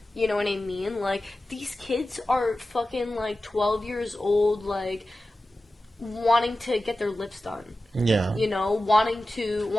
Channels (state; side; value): normal; both; correlation 0.94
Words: You know what I mean? Like, these kids are fucking, like, 12 years old, like, wanting to get their lips done. Yeah. You know, wanting